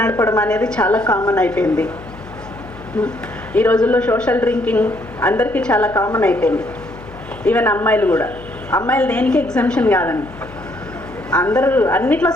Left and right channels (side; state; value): left; noise; hum, 18 dB below the sound